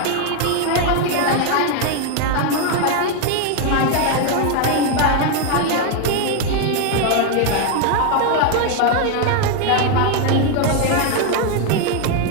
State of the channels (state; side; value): different; both; correlation 0.01